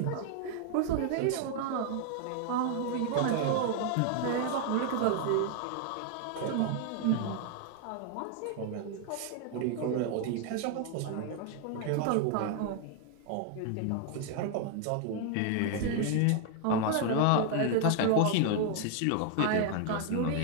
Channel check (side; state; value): both; different; correlation 0.00